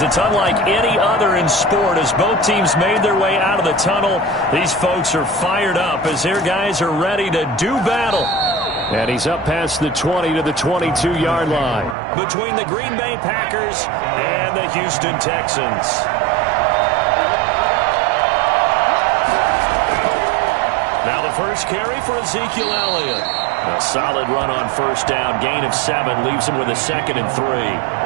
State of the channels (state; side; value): drops out; left; at 12.0 s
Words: It's unlike any other in sport as both teams made their way out of the tunnel. These folks are fired up as their guys are ready to do battle. And he's up past the 20 to the 22-yard line between the Green Bay Packers and the Houston Texans. Now the first carry for Ezekiel Elliott. A solid run on first down. Gain of 7 leaves him with a 2nd and 3. He's